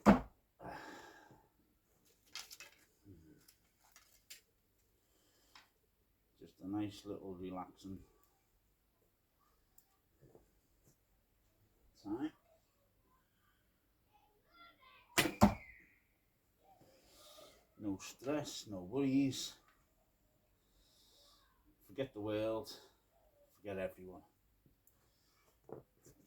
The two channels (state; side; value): identical; both; correlation 1.00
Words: Just a nice little relaxing time. No stress, no worries. Forget the world, forget everyone.